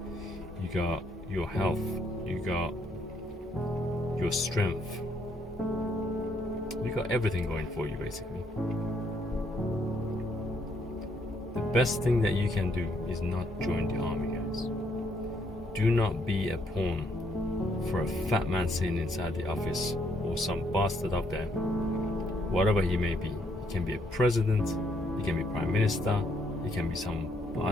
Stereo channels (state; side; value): normal; both; correlation 0.71